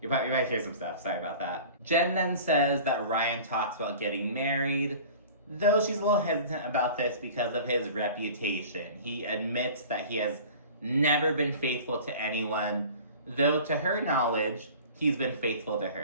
might hear some stuff. Sorry about that. Jen then says that Ryan talks about getting married, though she's a little hesitant about this because of his reputation. He admits that he has never been faithful to anyone, though to her knowledge, he's been faithful to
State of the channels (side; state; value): both; inverted; correlation -0.41